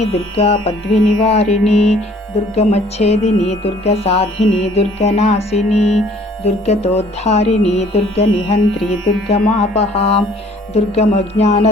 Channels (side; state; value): both; normal; correlation 0.56